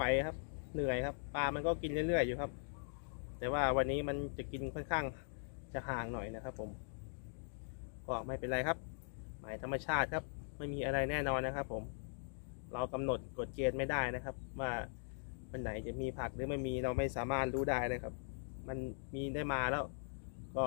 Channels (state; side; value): silent; right; digital silence